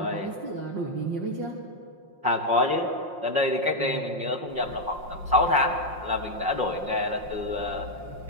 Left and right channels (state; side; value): late; left; 5.6 ms